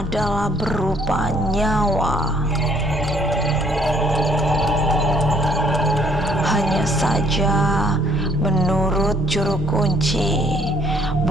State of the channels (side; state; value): both; normal; correlation 0.63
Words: berupa nyawa. Hanya saja menurut juru kunci,